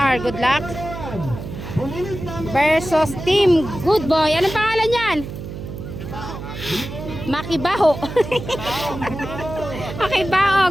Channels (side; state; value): right; noise; hum, 9 dB below the sound